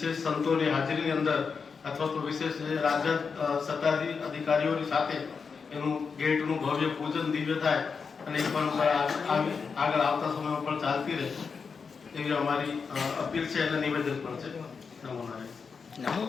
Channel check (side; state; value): right; quieter; 5.5 dB